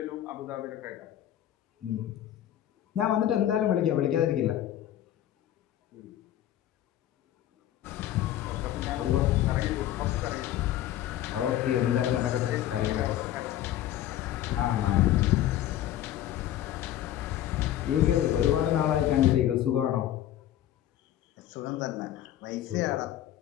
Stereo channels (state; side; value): quieter; right; 12.3 dB